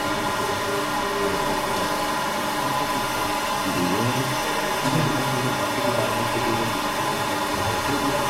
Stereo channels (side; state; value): both; identical; correlation 1.00